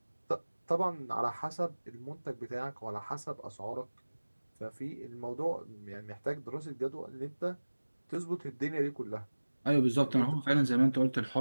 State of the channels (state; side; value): inverted; both; correlation -1.00